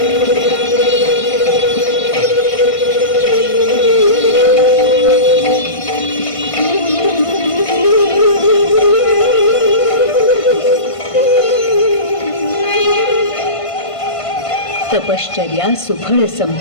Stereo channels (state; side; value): late; right; 1.5 ms